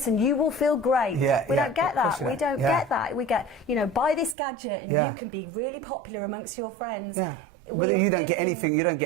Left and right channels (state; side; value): drops out; left; at 4.4 s